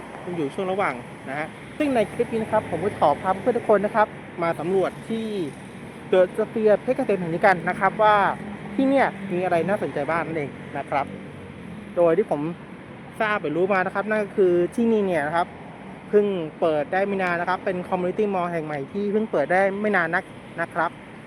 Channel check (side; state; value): both; identical; correlation 1.00